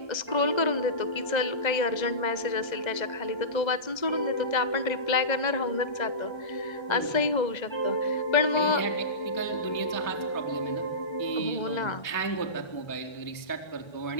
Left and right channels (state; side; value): late; right; 1.3 ms